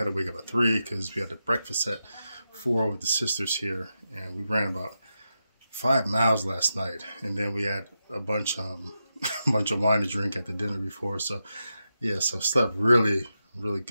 to wake up at 3 because we had the breakfast at 4 with the sisters here, and we ran about 5 miles last night, and then we had a bunch of wine to drink at the dinner before. So yeah, so slept really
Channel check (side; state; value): both; inverted; correlation -0.89